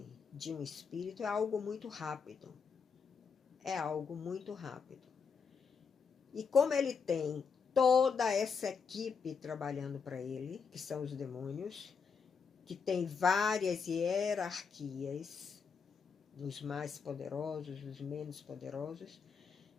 de um espírito é algo muito rápido. É algo muito rápido. E como ele tem toda essa equipe trabalhando para ele, que são os demônios, que tem várias hierarquias, os mais poderosos, os menos poderosos,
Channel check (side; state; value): right; quieter; 5.8 dB